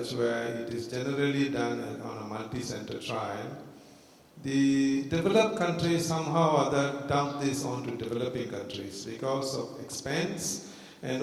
where it is generally done on a multi-center trial, the developed countries somehow or other dump this onto developing countries because of expense and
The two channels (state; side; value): identical; both; correlation 1.00